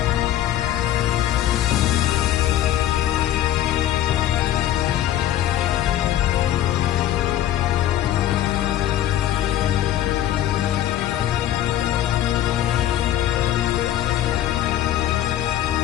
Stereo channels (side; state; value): right; quieter; 12.3 dB